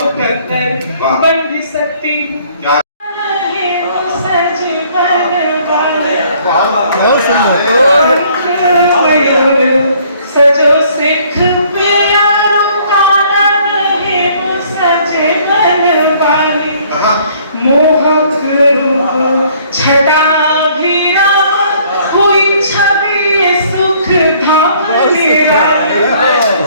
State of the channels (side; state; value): both; inverted; correlation -0.60